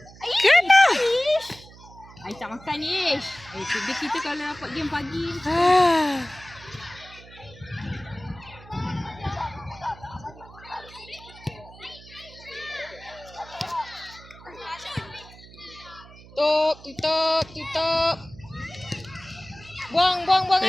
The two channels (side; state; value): right; noise; hum, 20 dB below the sound